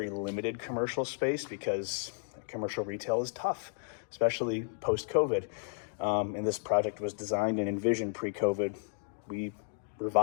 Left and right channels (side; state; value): right; silent; digital silence